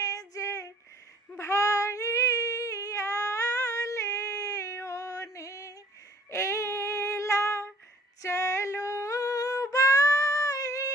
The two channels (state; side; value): normal; both; correlation 0.56